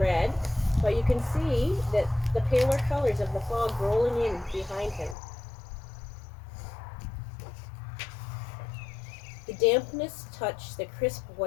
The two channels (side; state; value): right; drops out; at 5.2 s